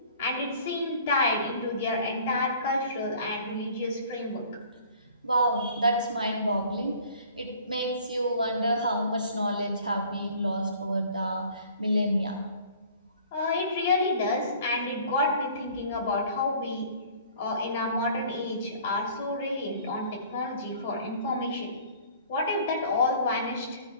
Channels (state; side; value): inverted; both; correlation -0.51